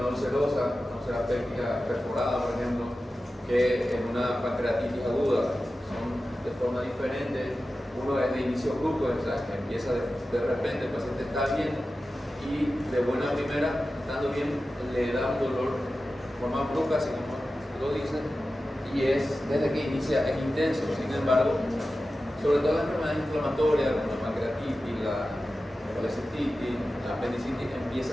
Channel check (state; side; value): normal; both; correlation 0.94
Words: ulcerosa, una úlcera péptica perforada, por ejemplo, que en una pancreatitis aguda. Son de forma diferente. Uno es de inicio brusco, o sea, que empieza de repente, el paciente está bien y de buena primera, estando bien, le da un dolor de forma brusca, así como lo dicen, y es desde que inicia, es intenso. Sin embargo, sobre todo las enfermedades inflamatorias como la pancreatitis, la colecistitis, la apendicitis,